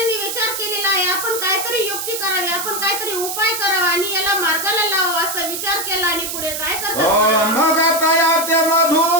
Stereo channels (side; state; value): right; noise; hiss, 4 dB below the sound